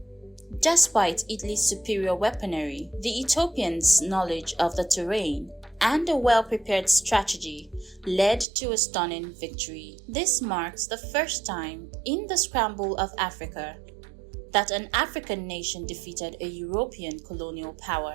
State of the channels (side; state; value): left; drops out; at 8.5 s